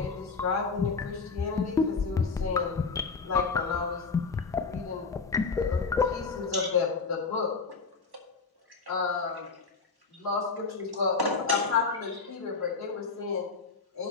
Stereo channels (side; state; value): right; quieter; 4.6 dB